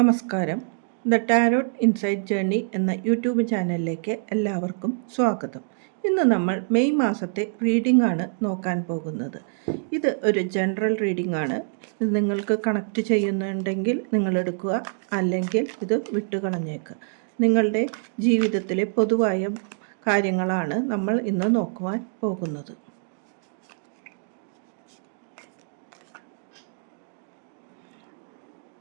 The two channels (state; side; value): silent; left; digital silence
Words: The tarot insight journey എന്ന YouTube ചാനലിലേക്ക് എല്ലാവർക്കും സ്വാഗതം. ഇന്ന് നമ്മൾ മെയ് മാസത്തെ റീഡിംഗ് ആണ് നോക്കാൻ പോകുന്നത്. ഇത് ഒരു ജനറൽ റീഡിംഗ് ആണ്. ഇത് നിങ്ങൾക്ക് കണക്റ്റ് ചെയ്യുന്നുണ്ടെങ്കിൽ നിങ്ങൾ എടുക്കുക, അല്ലെങ്കിൽ ഇത് വിട്ടുകളഞ്ഞേക്കുക. നിങ്ങളുടെ ജീവിതത്തിലെ പൊതുവായ കാര്യങ്ങളാണ് നമ്മൾ ഇന്ന് നോക്കുവാൻ പോകുന്നത്.